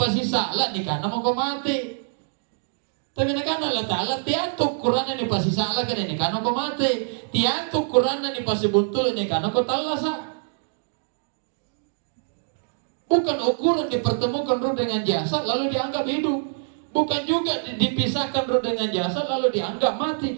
ni kana mo ko mati. Tapi nakan Allah Ta'ala tiantuk Qur'an ni pasisala kene ni kana ko mati. Tiantuk Qur'an ni pasibuntu ni kana ko talasa. Bukan ukuran dipertemukan roh dengan jasa lalu dianggap hidup. Bukan juga dipisahkan roh dengan jasa lalu dianggap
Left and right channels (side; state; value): left; silent; digital silence